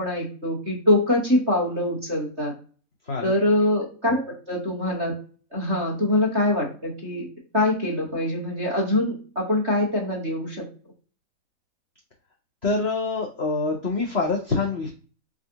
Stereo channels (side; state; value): left; late; 3.3 ms